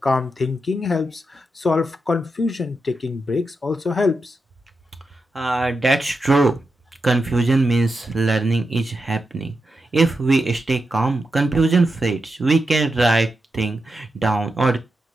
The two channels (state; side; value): normal; both; correlation 0.87